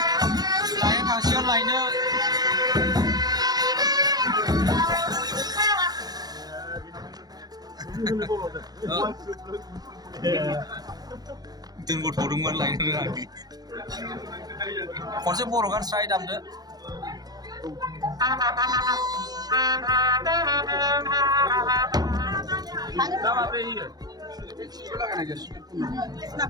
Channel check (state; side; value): late; left; 0.19 ms